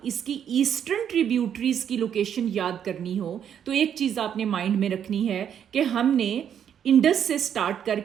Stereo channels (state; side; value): quieter; left; 8.9 dB